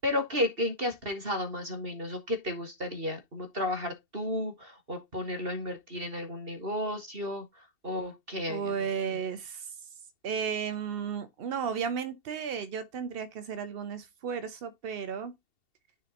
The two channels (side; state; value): left; late; 2.7 ms